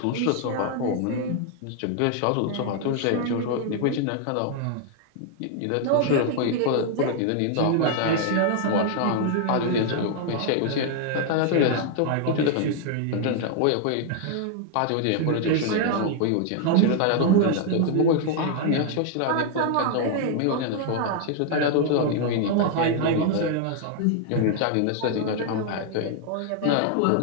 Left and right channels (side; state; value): both; different; correlation 0.00